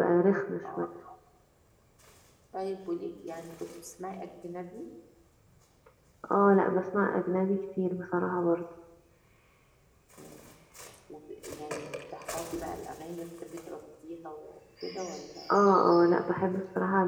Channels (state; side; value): identical; both; correlation 1.00